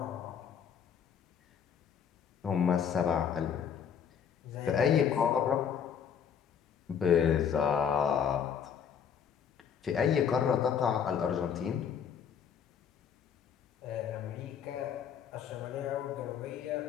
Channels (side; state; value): right; quieter; 7.7 dB